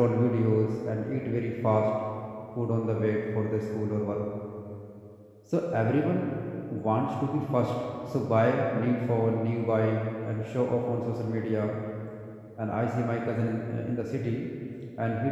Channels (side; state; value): both; identical; correlation 1.00